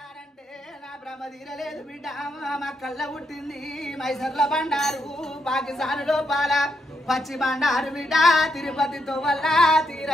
నా భ్రమ తీరలేదు బిడ్డ మా కళ్ళ పుట్టింది మైసర్ల బండారు పాకిస్తాన్ లోపాల పచ్చి బండారు బిడ్డ తిరుపతితో వల్ల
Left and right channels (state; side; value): normal; both; correlation 0.79